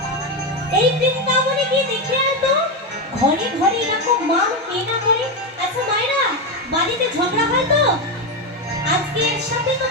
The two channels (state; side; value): normal; both; correlation 0.10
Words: এই বৃন্দাবনে গিয়ে দেখে আয় তো, ঘরে ঘরে এরকম মান কে না করে? আচ্ছা মায়েরা, বাড়িতে ঝগড়া হয় তো? আজকে এর সাথে তো